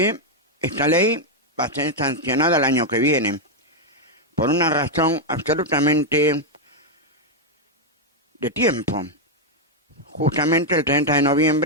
esta ley va a ser sancionada el año que viene, por una razón absolutamente de tiempo. Justamente el 30 de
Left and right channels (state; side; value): normal; both; correlation 0.00